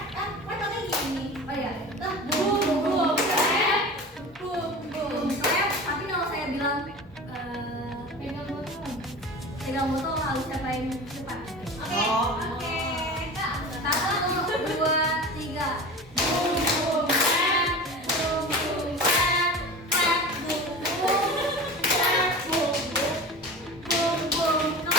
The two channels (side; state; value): both; normal; correlation 0.33